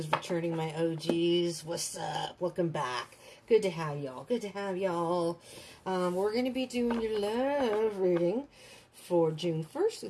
returning, my OGs, what's up? Welcome back. Good to have y'all. Good to have y'all. We're going to be doing your love reading for June 1st through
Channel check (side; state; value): both; identical; correlation 1.00